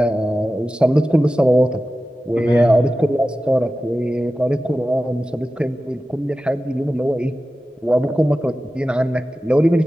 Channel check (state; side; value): normal; both; correlation 0.94